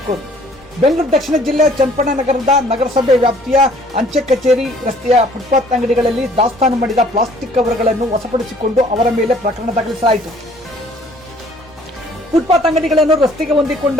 ಬೆಂಗಳೂರು ದಕ್ಷಿಣ ಜಿಲ್ಲೆ ಚನ್ನಪಟ್ಟಣ ನಗರದ ನಗರಸಭೆ ವ್ಯಾಪ್ತಿಯ ಅಂಚೆ ಕಚೇರಿ ರಸ್ತೆಯ ಫುಟ್ಪಾತ್ ಅಂಗಡಿಗಳಲ್ಲಿ ದಾಸ್ತಾನು ಮಾಡಿದ ಪ್ಲಾಸ್ಟಿಕ್ ಕವರ್ಗಳನ್ನು ವಶಪಡಿಸಿಕೊಂಡು ಅವರ ಮೇಲೆ ಪ್ರಕರಣ ದಾಖಲಿಸಲಾಯಿತು. ಫುಟ್ಪಾತ್ ಅಂಗಡಿಗಳನ್ನು ರಸ್ತೆಗೆ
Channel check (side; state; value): both; normal; correlation 0.57